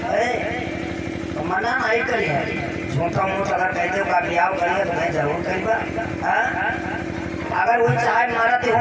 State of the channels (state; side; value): identical; both; correlation 1.00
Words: तो मना नहीं करी, झूठा मूठ अगर कह दो का विवाह करिए तो मैं जरूर करीबा। अगर वो चाहे मरते